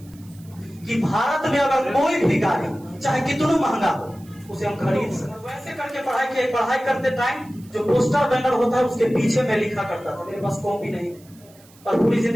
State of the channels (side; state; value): right; noise; hiss, 27 dB below the sound